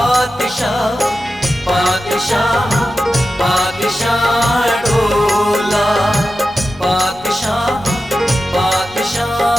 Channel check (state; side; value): normal; both; correlation 0.92